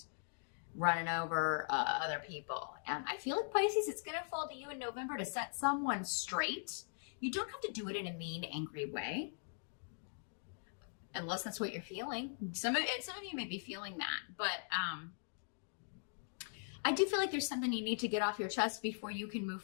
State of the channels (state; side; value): silent; right; digital silence